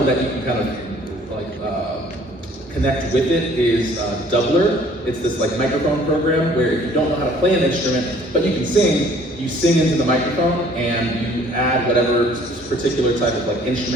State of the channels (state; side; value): normal; both; correlation 0.56